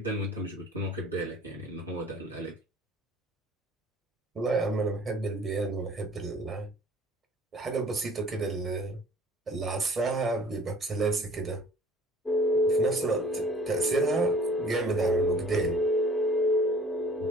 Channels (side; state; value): both; normal; correlation 0.50